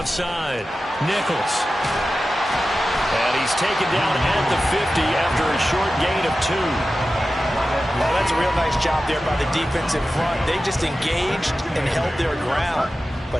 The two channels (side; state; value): both; normal; correlation 0.94